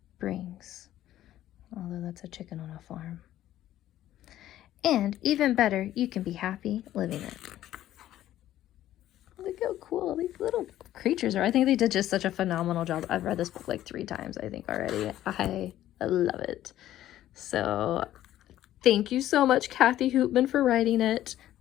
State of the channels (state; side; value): quieter; right; 13.1 dB